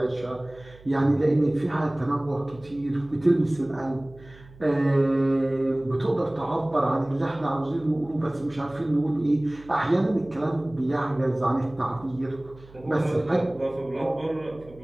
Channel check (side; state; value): right; noise; hum, 22 dB below the sound